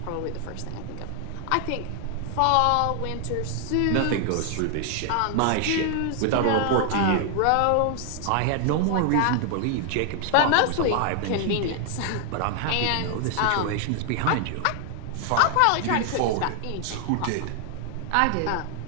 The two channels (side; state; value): both; different; correlation 0.00